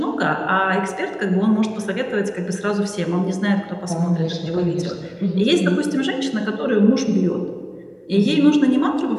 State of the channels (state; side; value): identical; both; correlation 1.00